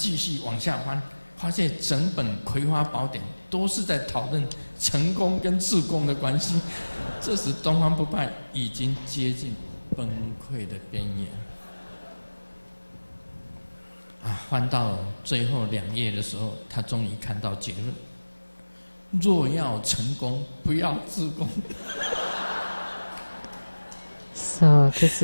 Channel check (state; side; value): inverted; both; correlation -1.00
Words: 续往下翻，发现整本《葵花宝典》都是在讨论成功跟自宫的关系。这时东方不败已经接近崩溃的边缘。翻到最后2页的时候，他终于看到结论：若要成功，不要自宫。So this